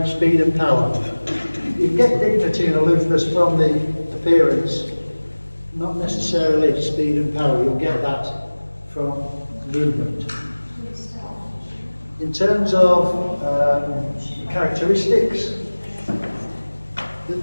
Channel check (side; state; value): both; inverted; correlation -1.00